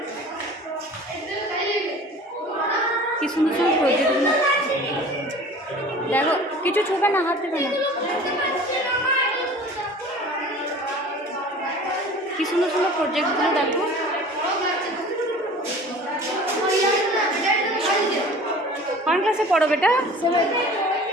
কি সুন্দর সুন্দর প্রজেক্টগুলো দেখো। কিছু ছুবে না, হাত দেবে না। কি সুন্দর সুন্দর প্রজেক্টগুলো দেখো। কোন ক্লাসে পড়ো বেটা?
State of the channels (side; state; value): both; normal; correlation 0.43